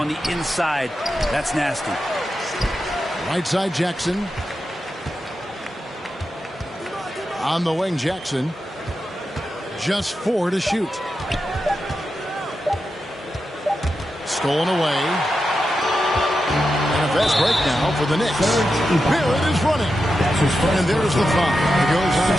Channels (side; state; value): both; normal; correlation 0.89